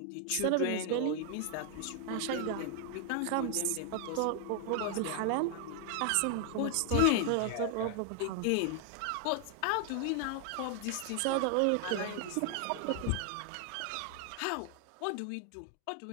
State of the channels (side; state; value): both; different; correlation 0.00